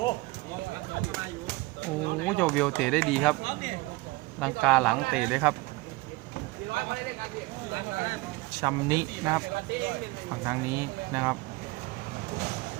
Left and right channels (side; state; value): left; quieter; 22.5 dB